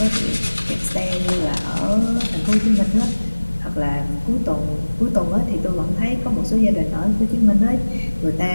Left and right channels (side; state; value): both; inverted; correlation -1.00